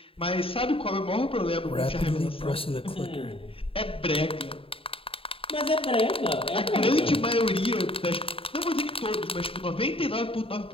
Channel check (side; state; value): right; late; 0.27 ms